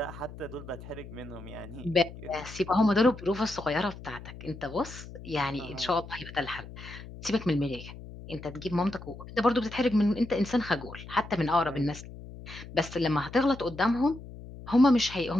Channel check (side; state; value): left; noise; hum, 14 dB below the sound